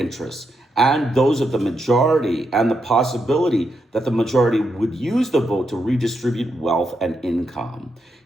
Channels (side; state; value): both; normal; correlation 0.82